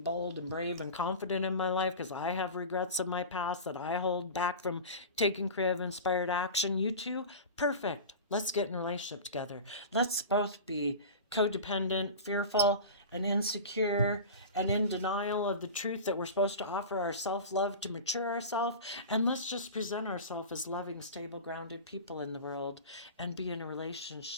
and brave and confident in my life because I have regrets of my past that I hold back from taking creative inspired action. You too? Perfect. Let's get in a relationship together. Let's both be codependent, fearful, and insecure, and in denial of the truth that we're supposed to offer our self-love to mature ourselves. And let's just present ourselves as loving, stable, grounded people in the world and be in a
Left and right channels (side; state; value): both; inverted; correlation -0.31